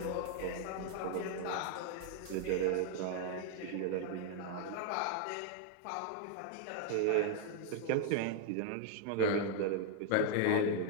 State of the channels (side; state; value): both; different; correlation 0.00